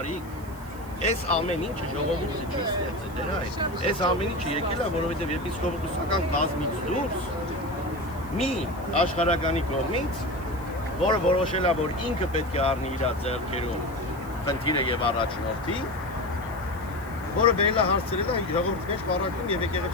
Այս ամեն ինչը ժողովուրդը չի ստեղծել, դրա է։ Այս ամեն ինչը եկել է, որովհետև եպիսկոպոսական կազմից դուրս մի աշխարհականի կողմից, որը որոշել է, որ ինքը պետք է առնի իր ձեռքերում խնդիրը եւ առաջնորդի, որը բերել է հարցրել է ժողովրդի մեջ պարակում եւ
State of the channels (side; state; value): right; noise; hiss, 22 dB below the sound